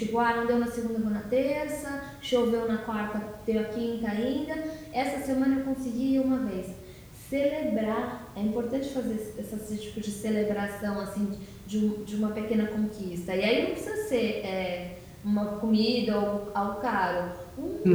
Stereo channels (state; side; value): identical; both; correlation 1.00